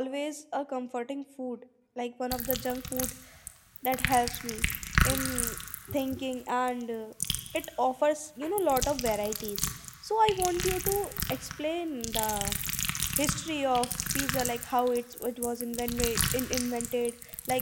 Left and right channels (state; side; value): identical; both; correlation 1.00